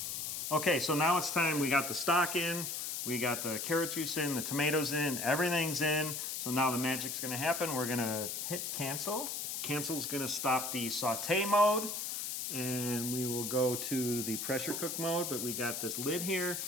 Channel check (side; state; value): left; noise; hiss, 3 dB below the sound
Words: Okay, so now it's time. We got the stock in, we got the carrot juice in, the tomatoes in, everything's in. So now the magic's going to happen. We're going to hit cancel. Cancel's going to stop the saute mode. And we will go to the pressure cook mode, but we got this lid here.